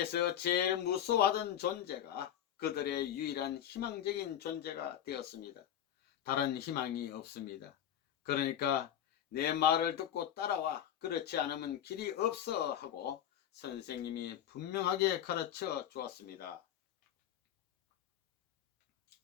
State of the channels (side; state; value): right; quieter; 10.4 dB